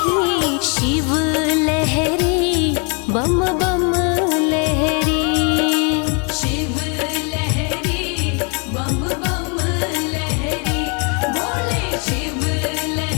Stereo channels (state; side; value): quieter; right; 35.7 dB